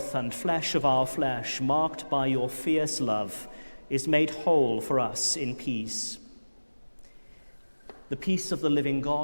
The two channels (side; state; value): both; inverted; correlation -1.00